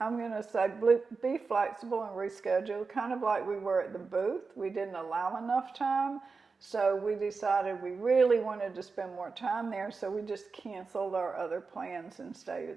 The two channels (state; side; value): quieter; left; 4.5 dB